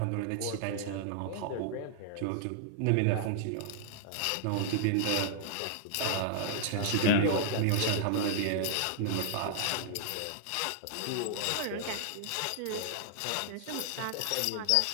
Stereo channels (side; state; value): both; different; correlation -0.01